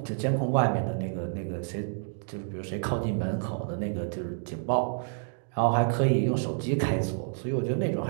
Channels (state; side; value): silent; left; digital silence